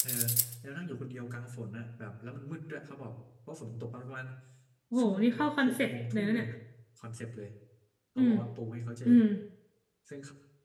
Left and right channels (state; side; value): identical; both; correlation 1.00